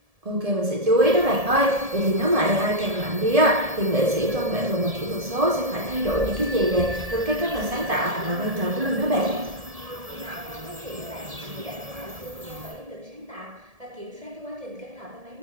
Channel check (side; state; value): left; late; 1.7 ms